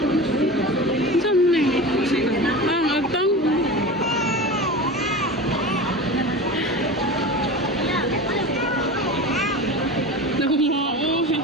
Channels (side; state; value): both; normal; correlation 0.30